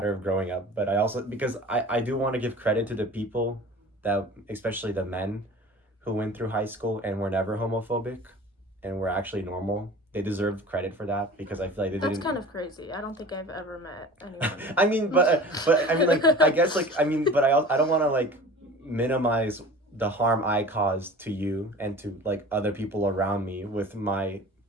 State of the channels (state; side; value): normal; both; correlation 0.40